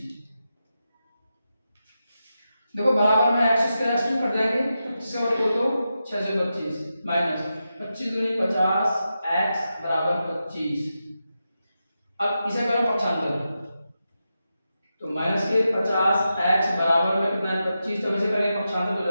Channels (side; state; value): both; inverted; correlation -0.89